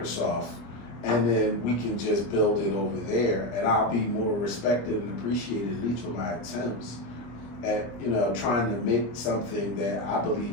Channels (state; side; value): late; right; 25 ms